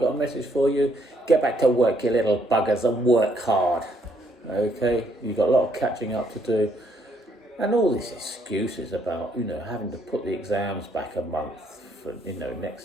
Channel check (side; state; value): both; normal; correlation 0.70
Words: a message for you? Get back to work, you little buggers, and work hard. Okay, you've got a lot of catching up to do. And all these excuses about, having to put the exams back a month for,